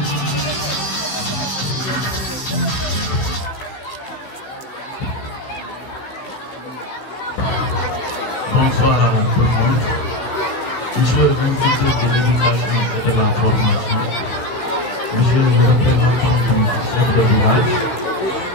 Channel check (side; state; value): right; late; 15 ms